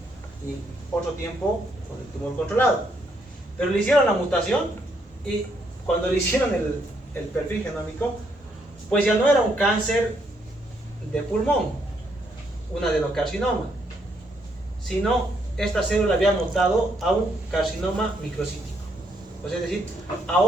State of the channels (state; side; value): normal; both; correlation 0.74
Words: y otro tiempo con el tumor controlado. Pero le hicieron la mutación y cuando le hicieron el perfil genómico, pues ya no era un cáncer de pulmón, un adenocarcinoma, sino esta célula había mutado a un carcinoma microcítico, pues es decir, a